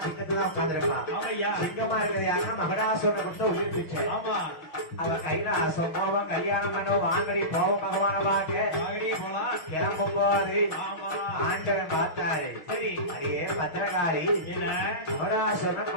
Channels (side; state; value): right; late; 6.3 ms